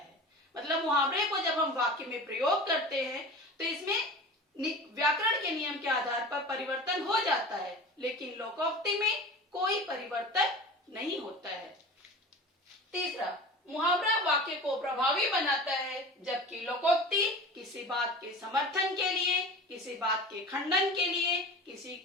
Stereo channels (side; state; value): both; normal; correlation 0.35